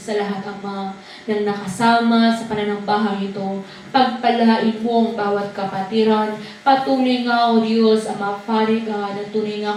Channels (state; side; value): identical; both; correlation 1.00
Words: lahat, Ama, ng nakasama sa pananambahang ito. Pagpalain mo ang bawat kapatiran. Patuloy nga, O Diyos, Ama, Father God, at tunay nga